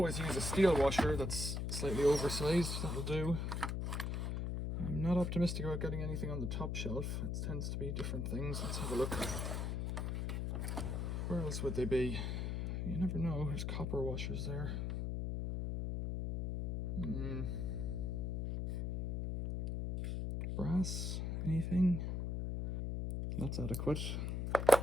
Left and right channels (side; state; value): left; noise; hum, 1 dB below the sound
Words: use a steel washer that's slightly oversized, that'll do. I'm not optimistic about getting anything on the top shelf. It tends to be different things. Let's have a look. Where else would they be? You never know. There's copper washers there. Brass? Anything? That's adequate.